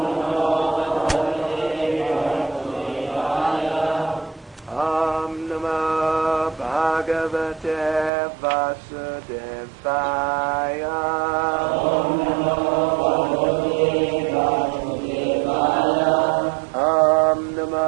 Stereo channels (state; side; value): drops out; left; at 8.1 s